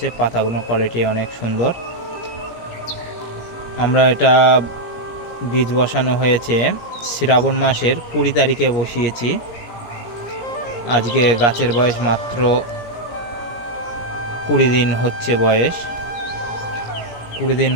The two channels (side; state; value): right; late; 17 ms